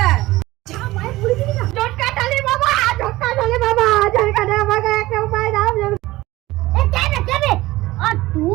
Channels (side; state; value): left; quieter; 18.2 dB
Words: যা ভাই পুরি দিবি না। ঝটকা ঢালে বাবা, ঝটকা ঢালে বাবা, ঝটকা ঢালে আমাকে একটা উপায় দাও। এ কেবে আর